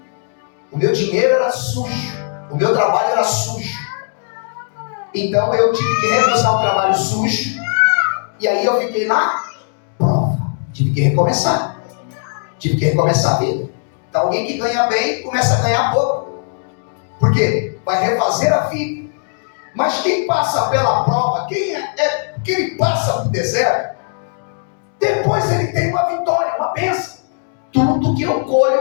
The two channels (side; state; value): right; silent; digital silence